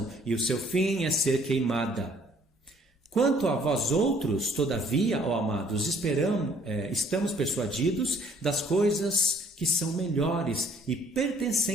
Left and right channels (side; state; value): both; normal; correlation 0.60